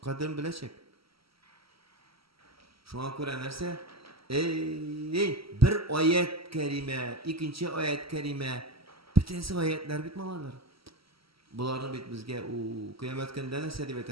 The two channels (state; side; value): late; left; 0.75 ms